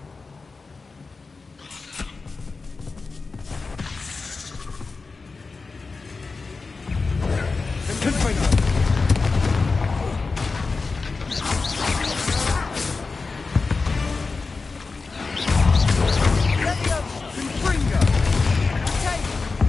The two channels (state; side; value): quieter; right; 4.2 dB